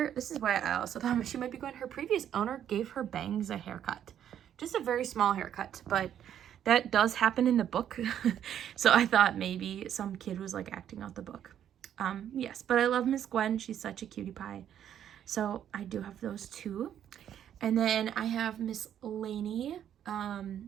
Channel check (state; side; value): quieter; left; 10.0 dB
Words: this is why I also thought she might be Gwen, her previous owner gave her bangs a haircut. Just a very small haircut, but that does happen in the book. So I thought maybe some kid was like acting out the book. Yes, but I love Miss Gwen. She's such a cutie pie. So I do have those two. And then I have Miss Lainey,